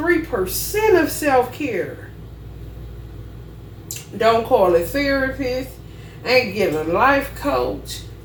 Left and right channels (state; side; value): identical; both; correlation 1.00